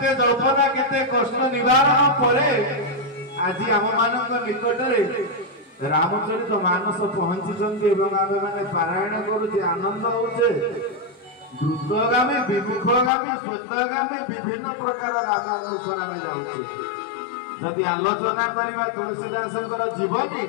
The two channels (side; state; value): right; drops out; at 13.1 s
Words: जल्पना केते कष्ट निवारण पर आज आम मान निकट रामचरित मानस पहुंची आम मैंने पारायण करुचे आनंद होचे द्रुतगामी विमुखगामी श्वेतगामी विभिन्न प्रकार गामी अनुसार आम जाऊे जदि आलोचना करवा तुलसीदास जीवनी